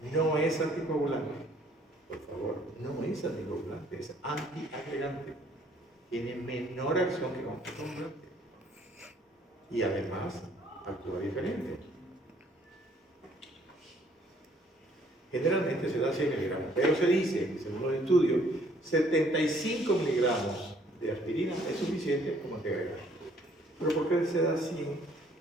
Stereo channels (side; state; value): both; normal; correlation 0.62